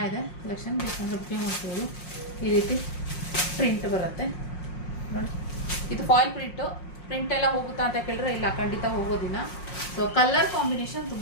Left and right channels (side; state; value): right; late; 5.6 ms